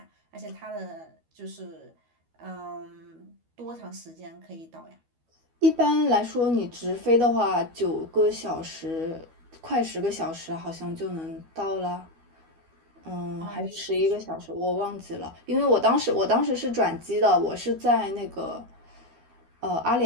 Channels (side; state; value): left; late; 12 ms